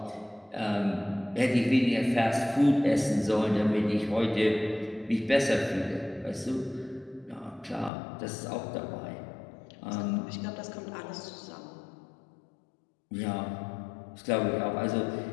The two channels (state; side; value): drops out; right; at 7.9 s